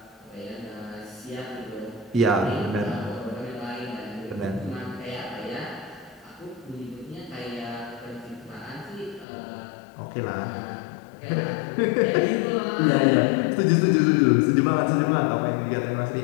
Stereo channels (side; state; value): right; drops out; at 9.2 s